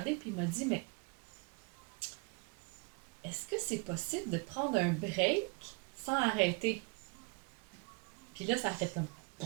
puis il m'a dit, mais est-ce que c'est possible de prendre un break sans arrêter? Puis là, ça a fait comme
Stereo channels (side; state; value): left; quieter; 32.7 dB